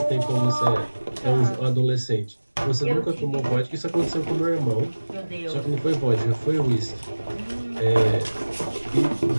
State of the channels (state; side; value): inverted; both; correlation -1.00